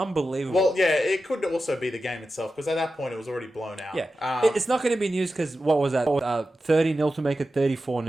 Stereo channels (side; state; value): both; normal; correlation 0.92